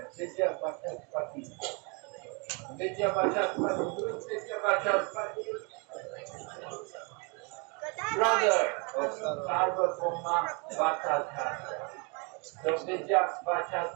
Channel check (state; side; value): quieter; left; 33.4 dB